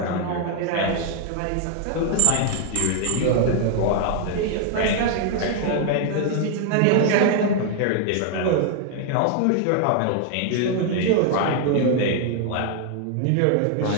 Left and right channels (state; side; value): different; both; correlation 0.00